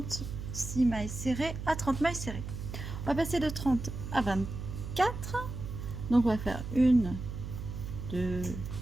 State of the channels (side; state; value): right; noise; hum, 7 dB below the sound